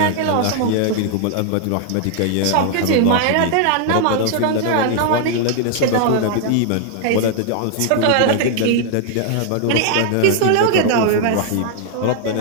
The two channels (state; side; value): different; both; correlation 0.00